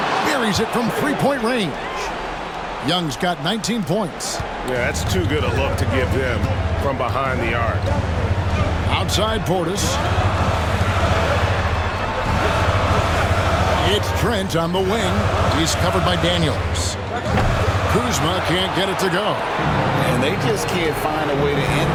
buries it from 3-point range. Young's got 19 points. Yeah, that's too good a look to give them from behind the arc. Outside Portis. It's Trent on the wing. He's covered by Daniels. Kuzma can't get it to go. And they just can't find a way to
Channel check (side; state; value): both; identical; correlation 1.00